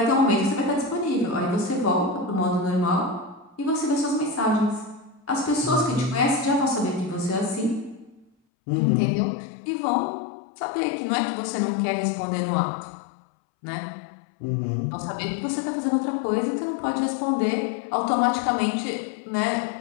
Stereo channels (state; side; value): drops out; right; at 8.3 s